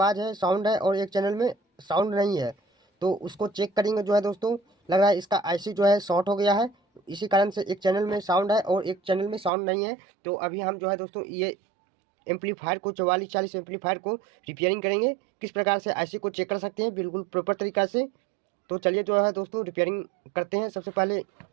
है, साउंड है, और एक चैनल में साउंड नहीं है। तो उसको चेक करेंगे। जो है दोस्तों, लग रहा है इसका आईसी जो है शॉर्ट हो गया है, इसी कारण से एक चैनल में साउंड है और एक चैनल में साउंड नहीं है। तो अभी हम जो है दोस्तों, ये एम्पलीफायर को 4440 एम्पलीफायर को रिपेयरिंग करेंगे। किस प्रकार से आईसी को चेक कर सकते हैं बिल्कुल प्रॉपर तरीका से। तो चलिए जो है दोस्तों, रिपेयरिंग करते हैं। सबसे पहले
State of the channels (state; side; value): drops out; left; at 9.5 s